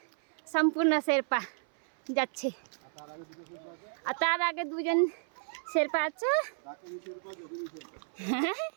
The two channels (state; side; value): silent; left; 56 dB below the other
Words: সম্পূর্ণ শেরপা যাচ্ছে, আর তার আগে দুজন শেরপা আছে।